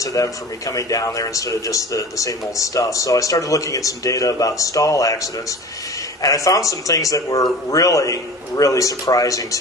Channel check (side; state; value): both; normal; correlation 0.38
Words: to them for me coming down there instead of just the same old stuff. So I started looking at some data about stall accidents, and I found some things that were really, really surprising